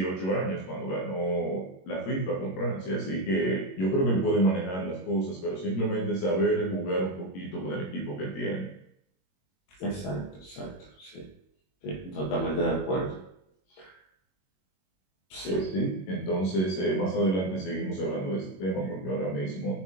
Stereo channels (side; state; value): right; late; 21 ms